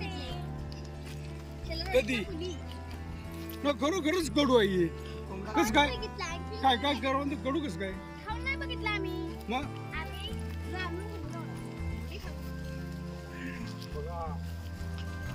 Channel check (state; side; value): identical; both; correlation 1.00